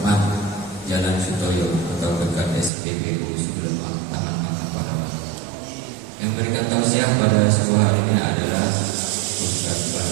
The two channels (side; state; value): left; drops out; at 2.7 s